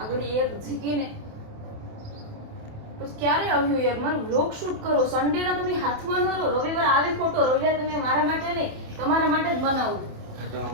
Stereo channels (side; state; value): left; late; 27 ms